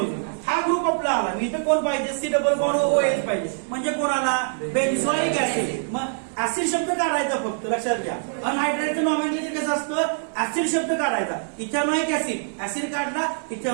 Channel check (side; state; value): left; silent; digital silence